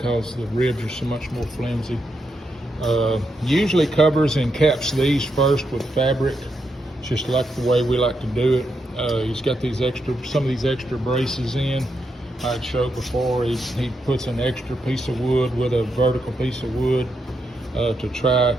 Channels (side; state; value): both; normal; correlation 0.82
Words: the ribs are so much more flimsy. Usually covers and caps these first with fabric. It's just like the way we like to do it. He's got these some of these extra braces in. I'd showed before, he puts an extra piece of wood with a vertical piece of wood to try